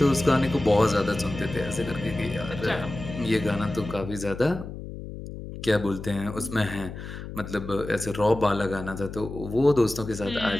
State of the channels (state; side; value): noise; left; hum, 10 dB below the sound